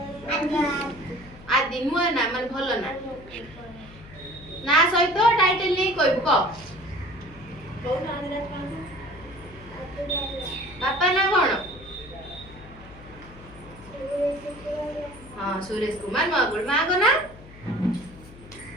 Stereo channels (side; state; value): left; noise; hum, 19 dB below the sound